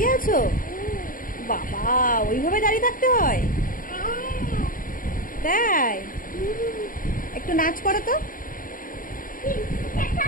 আছো? বাবা, ওইভাবে দাঁড়িয়ে থাকতে হয়? তাই? একটু নাচ করো তো।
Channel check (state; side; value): late; right; 0.40 ms